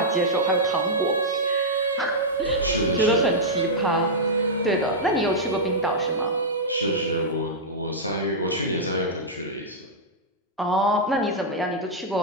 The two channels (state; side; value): normal; both; correlation -0.08